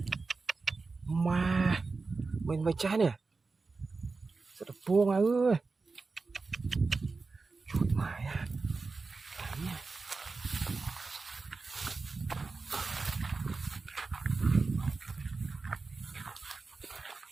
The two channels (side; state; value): left; quieter; 4.1 dB